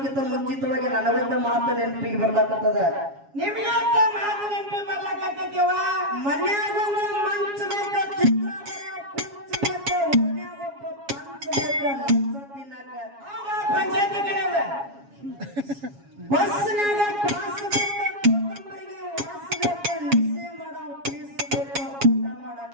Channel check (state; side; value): late; left; 7.3 ms